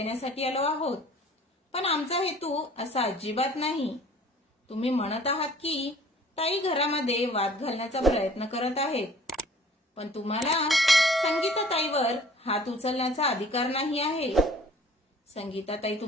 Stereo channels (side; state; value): both; normal; correlation 0.51